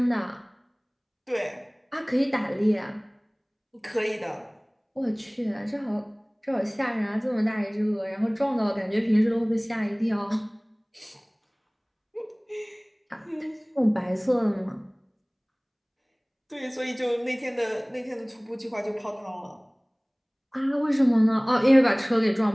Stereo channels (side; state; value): both; identical; correlation 1.00